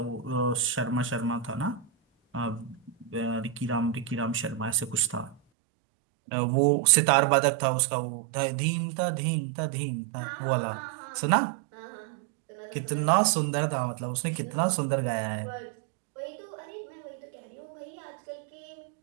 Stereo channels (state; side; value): drops out; left; at 5.4 s